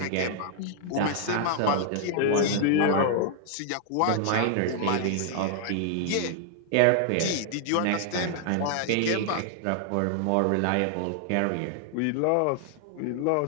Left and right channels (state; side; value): different; both; correlation 0.00